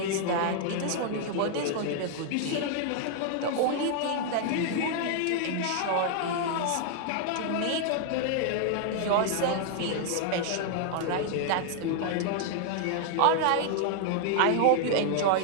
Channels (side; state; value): both; different; correlation 0.00